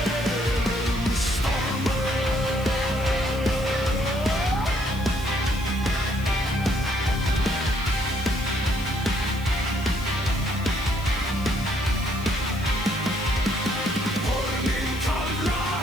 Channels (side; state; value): right; noise; hiss, 20 dB below the sound